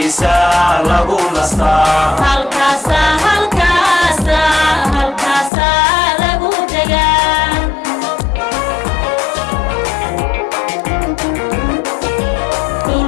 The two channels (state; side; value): drops out; right; at 5.5 s